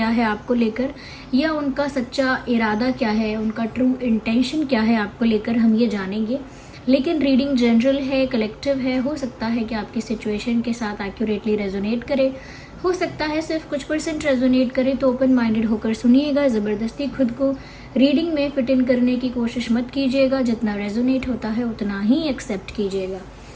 है आपको लेकर, या उनका सच्चा इरादा क्या है, उनका ट्रू इंटेंशन क्या है आपको लेकर, हम ये जानेंगे। लेकिन रीडिंग जनरल है, कलेक्टिव है, हो सकता है कि आपकी सिचुएशन के साथ एक्यूरेटली रेजोनेट करे, हो सकता है सिर्फ कुछ % रेजोनेट करे। तो ओपन माइंडेड होकर सुनिएगा, ज़बरदस्ती खुद को रीडिंग में फिट इन करने की कोशिश मत कीजिएगा। जितना रेजोनेट होता है उतना ही एक्सेप्ट कीजिएगा।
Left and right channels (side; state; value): both; identical; correlation 1.00